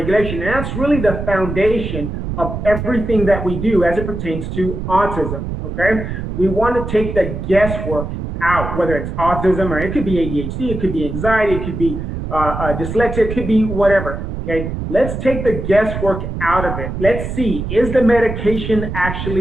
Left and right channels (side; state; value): right; noise; rumble, 5 dB below the sound